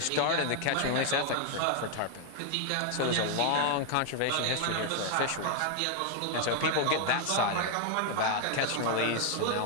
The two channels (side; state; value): both; different; correlation 0.00